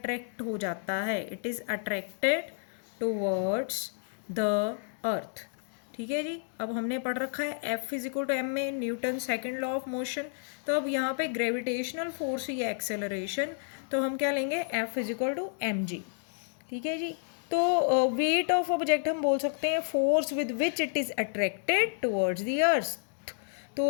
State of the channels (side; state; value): right; silent; digital silence